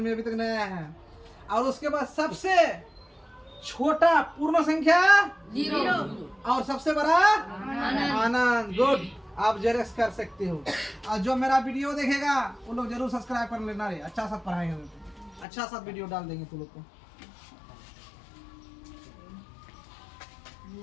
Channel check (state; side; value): drops out; right; at 15.5 s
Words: अभी तक नहीं आया है। और उसके बाद सबसे छोटा पूर्ण संख्या 0 और सबसे बड़ा अनंत। गुड। आप जेरेक्स कर सकते हो। और जो मेरा वीडियो देखेगा वो लोग जरूर सब्सक्राइब कर लेना रे, अच्छा सा पढ़ाएंगे, अच्छा सा वीडियो डाल देंगे तुम लोग को।